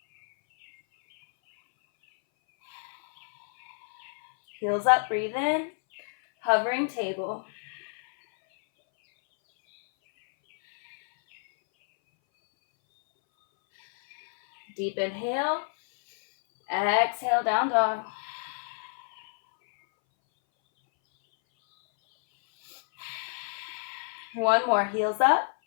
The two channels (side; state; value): right; silent; 59 dB below the other